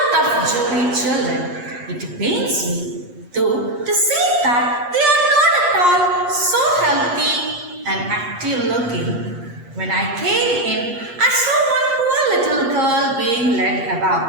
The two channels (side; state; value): left; late; 8.4 ms